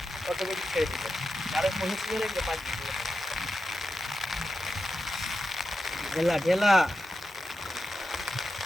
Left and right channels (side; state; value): both; normal; correlation 0.90